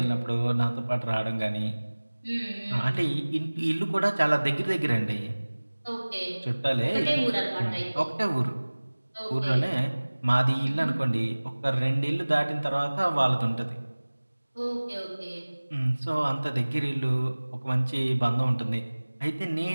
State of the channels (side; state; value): both; inverted; correlation -1.00